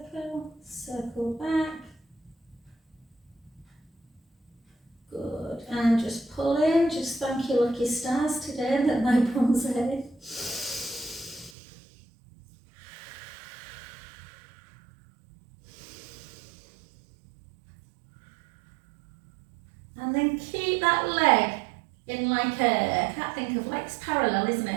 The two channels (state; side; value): drops out; left; at 11.5 s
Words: circle back. Good, and just pull in, just thank your lucky stars today that my bum's head. And then keep that leg in like a, I can't think of, legs parallel, isn't